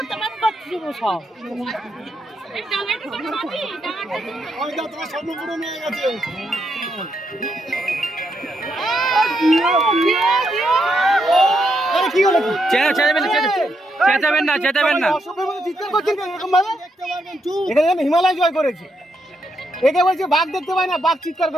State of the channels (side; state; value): both; normal; correlation 0.80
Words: তোমার স্বপ্ন পূরণ হয়ে গেছে। কি হলো? চেঁচাবেন না, চেঁচাবেন না। চিৎকার করছেন এরকম ভাবে? এখানে হিমালয় জয় করেছে। একে বলছে বাঘ দেখতে পায় না, বাঘ চিৎকার